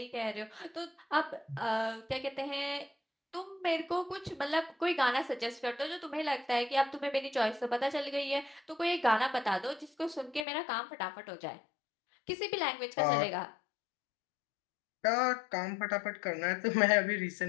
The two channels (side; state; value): right; drops out; at 10.5 s